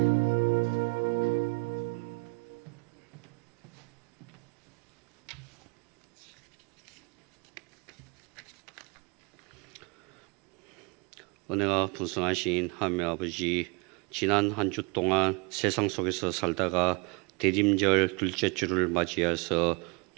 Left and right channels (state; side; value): quieter; left; 30.0 dB